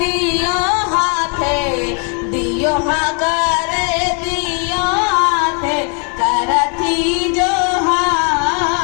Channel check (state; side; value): quieter; right; 38.2 dB